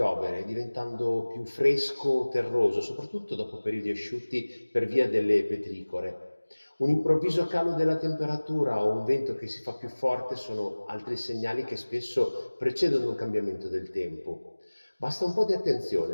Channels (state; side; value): inverted; both; correlation -1.00